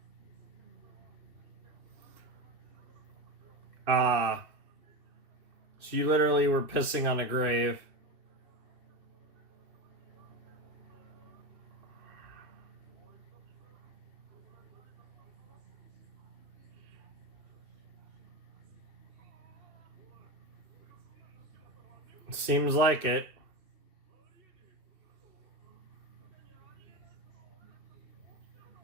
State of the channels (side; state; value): left; late; 2.7 ms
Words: Ah. So you literally were pissing on a grave. Seems like it.